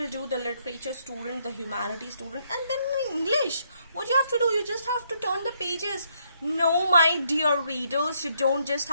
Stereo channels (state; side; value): inverted; both; correlation -0.73